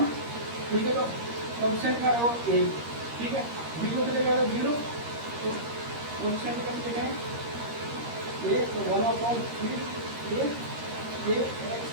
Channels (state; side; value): late; left; 13 ms